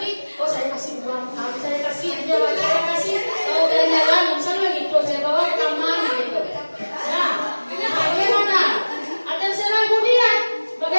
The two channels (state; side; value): inverted; both; correlation -1.00